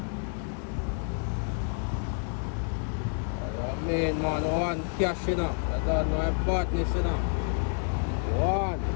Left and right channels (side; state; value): right; silent; 59 dB below the other